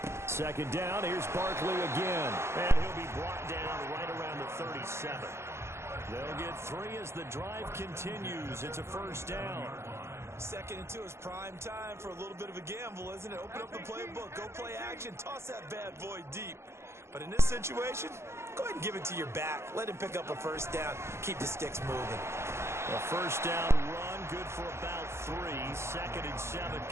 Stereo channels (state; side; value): late; left; 0.13 ms